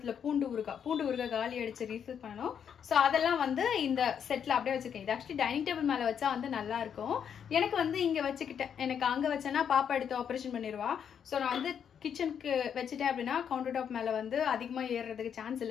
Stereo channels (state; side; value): quieter; right; 8.0 dB